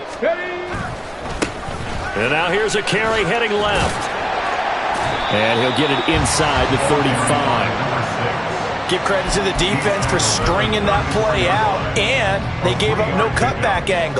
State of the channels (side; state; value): both; identical; correlation 1.00